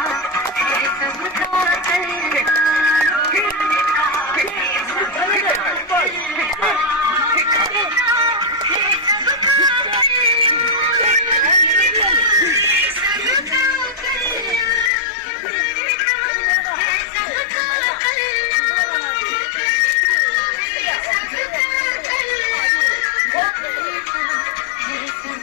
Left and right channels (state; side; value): drops out; right; at 14.9 s